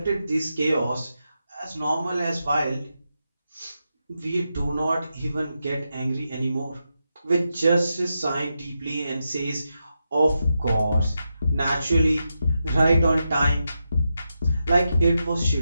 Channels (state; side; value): inverted; both; correlation -0.87